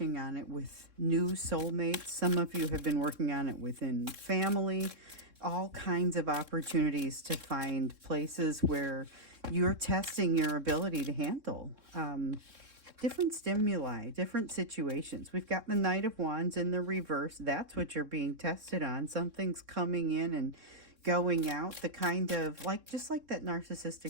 on it with new soulmates. Some of you have been working on it within family. All kinds of opportunities to find places where you're testing your ability to handle different stimuli, different situations. We've got the Knight of Wands in the reverse. That's what you're being tested on. Something's coming in and going out, the kind of like, just like that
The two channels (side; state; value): left; late; 3.6 ms